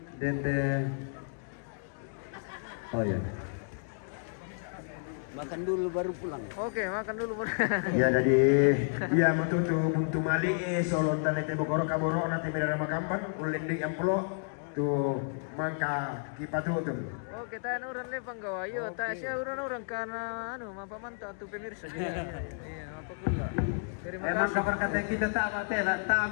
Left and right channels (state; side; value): silent; right; digital silence